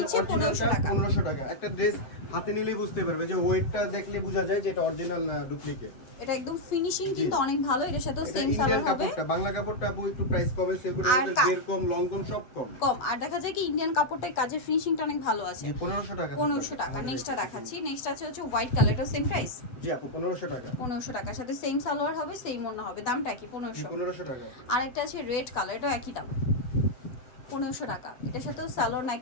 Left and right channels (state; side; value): late; right; 7.9 ms